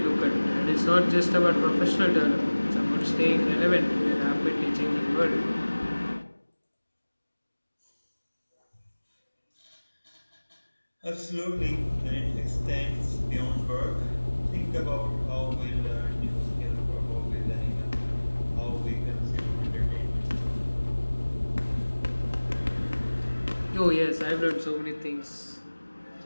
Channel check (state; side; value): inverted; both; correlation -1.00